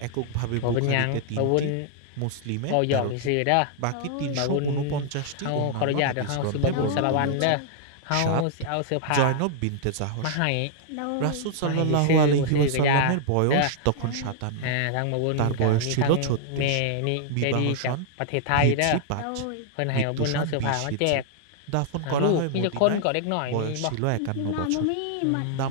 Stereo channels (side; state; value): both; different; correlation -0.01